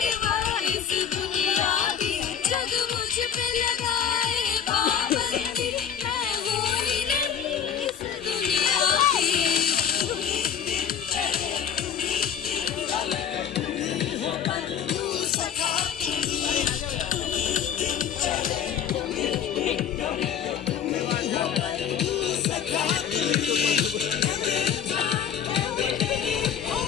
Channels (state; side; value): quieter; right; 8.2 dB